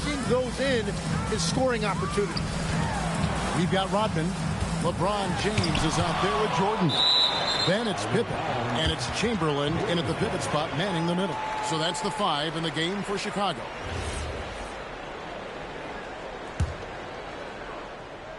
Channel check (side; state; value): both; identical; correlation 1.00